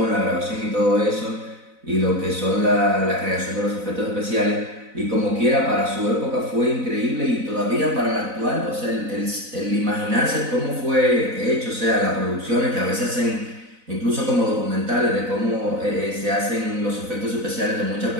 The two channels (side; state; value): left; late; 4.0 ms